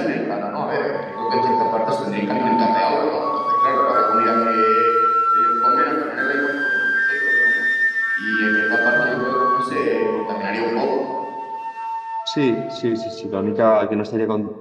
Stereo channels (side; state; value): both; identical; correlation 1.00